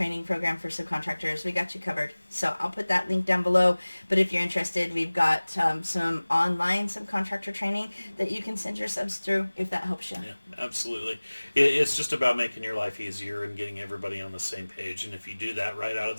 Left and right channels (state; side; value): inverted; both; correlation -1.00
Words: program for subcontractors, we got you covered. So I'll put that link down below. But if you're interested, we've got some online subcontractor training that you can send your subs through if that helps you. Yeah, absolutely. It's just about making your life easier and getting everybody on the same page. And if you do that right out of